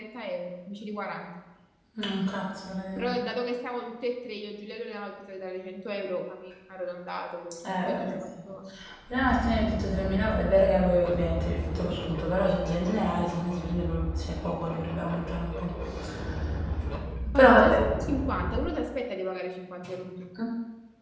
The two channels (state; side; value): identical; both; correlation 1.00